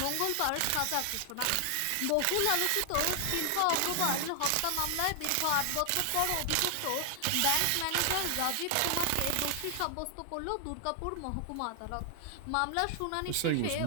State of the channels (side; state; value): both; different; correlation 0.00